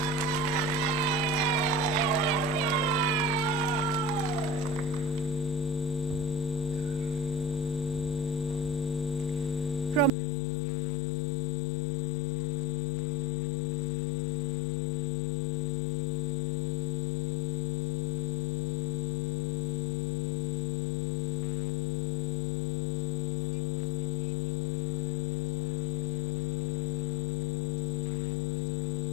Promise Sekoba. Lesejo Sereme.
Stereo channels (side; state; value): right; drops out; at 10.1 s